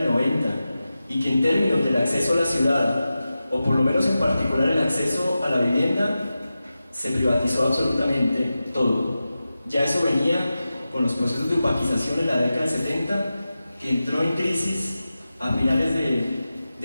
90 y que en términos del acceso a la ciudad, o por lo menos en particular el acceso a la vivienda, se privatizó absolutamente todo. Ya eso venía con los procesos de opaquización en la década del 70, que entró en crisis a finales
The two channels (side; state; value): both; inverted; correlation -0.93